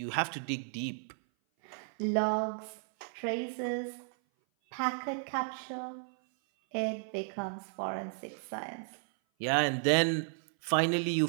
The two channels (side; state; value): left; silent; 55 dB below the other